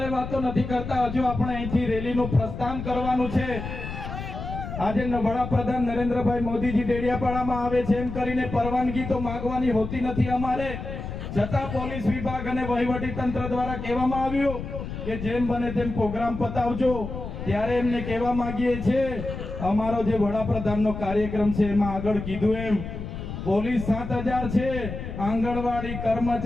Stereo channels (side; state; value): left; noise; rumble, 7 dB below the sound